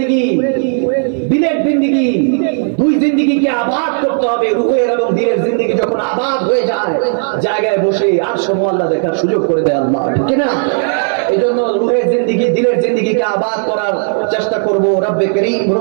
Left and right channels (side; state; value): left; silent; digital silence